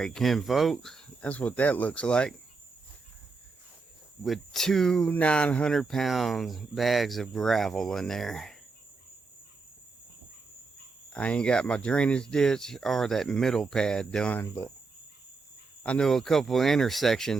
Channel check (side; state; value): left; quieter; 4.2 dB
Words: kin folks, that's what that looks like. With 2 900-pound bags of gravel in there. I ain't got my drainage ditch or that middle pad done, but I know a couple of